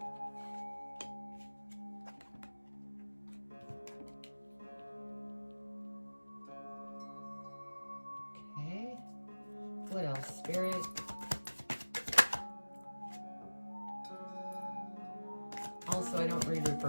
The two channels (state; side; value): inverted; both; correlation -1.00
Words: What else, Spirit? Also, I don't read